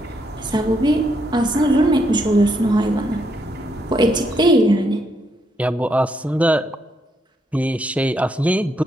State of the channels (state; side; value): normal; both; correlation 0.76